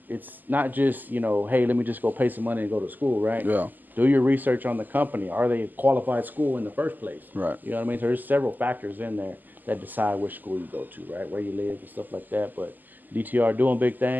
not just, hey, let me just go pay some money and go to school, right? Yeah. Do your research on the company. Are they a qualified school in the first place? Right. You know what I mean? So there's several factors in there that decide which school you go to, right? Where you live and stuff like that. But DTR doing big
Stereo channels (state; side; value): late; left; 0.086 ms